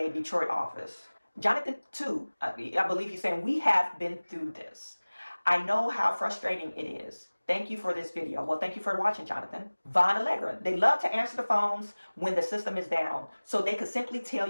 Detroit office. Jonathan, too, I believe he's saying, we have been through this. I know how frustrating it is. Thank you for this video. Well, thank you for watching, Jonathan. Von Allegra, they love to answer the phones when the system is down. So they could simply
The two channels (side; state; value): both; inverted; correlation -1.00